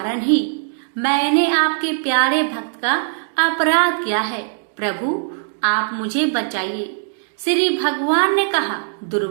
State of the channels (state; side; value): silent; left; digital silence